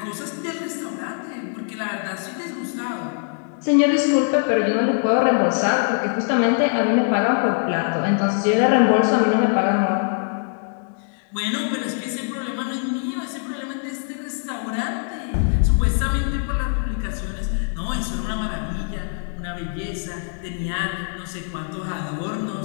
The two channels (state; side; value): silent; right; 58 dB below the other